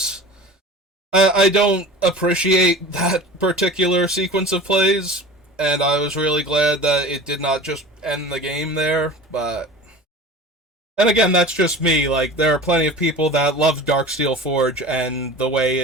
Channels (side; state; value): both; normal; correlation 0.37